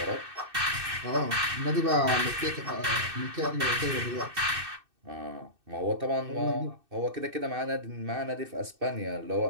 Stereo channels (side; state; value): left; late; 2.6 ms